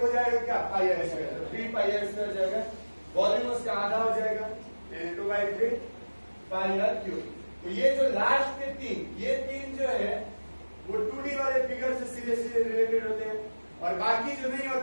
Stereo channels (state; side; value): inverted; both; correlation -1.00